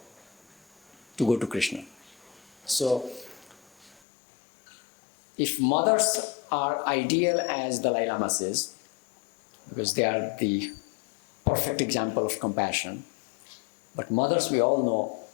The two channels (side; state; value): right; drops out; at 4.0 s